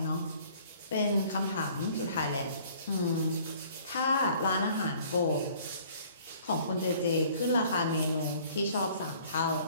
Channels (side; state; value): both; inverted; correlation -0.55